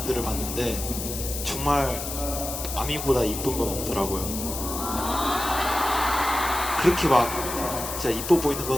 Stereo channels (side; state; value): left; noise; hiss, 6 dB below the sound